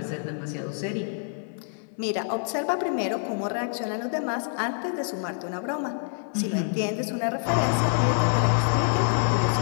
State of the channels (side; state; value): right; silent; 60 dB below the other